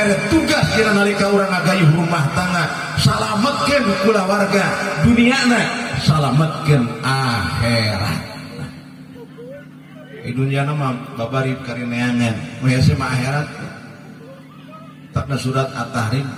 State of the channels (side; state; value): both; identical; correlation 1.00